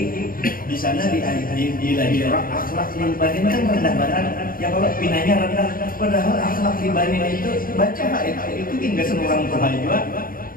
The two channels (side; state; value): right; late; 0.41 ms